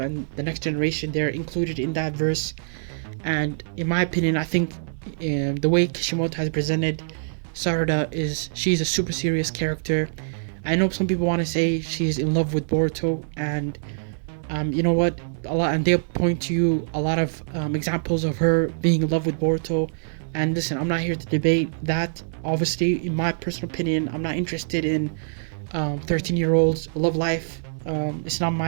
and the next generation, they're included in that verse. And in my opinion, I think the way Kishimoto has presented Sarada she's a super serious character. I know some people want to say she's in love with Boruto, and you know what? And they'll point to you a lot of examples of her being in love with Boruto. And listen, I'm not here to debate that. Obviously, in my personal opinion, I'm not interested in 13-year-olds' love life. It's not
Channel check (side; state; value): left; silent; digital silence